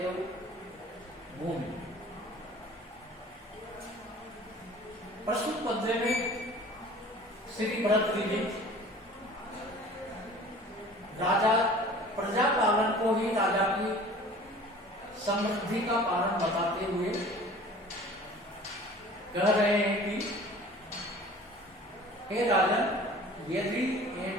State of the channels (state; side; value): normal; both; correlation 0.45